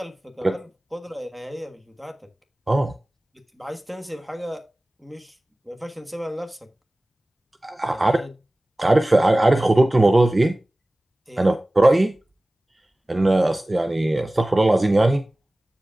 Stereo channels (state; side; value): normal; both; correlation 0.98